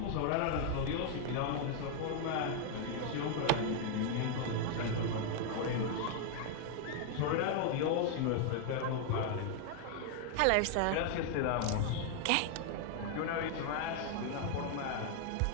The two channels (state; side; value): different; both; correlation 0.00